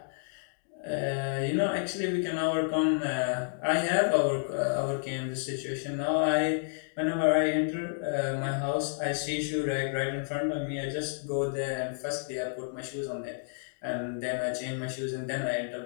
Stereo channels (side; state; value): right; silent; digital silence